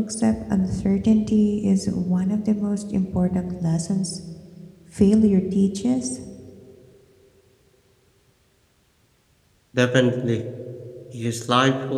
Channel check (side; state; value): both; identical; correlation 1.00